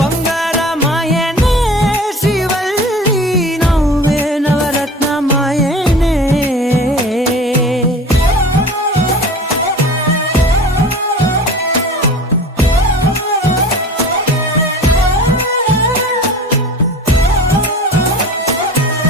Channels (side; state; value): both; normal; correlation 0.39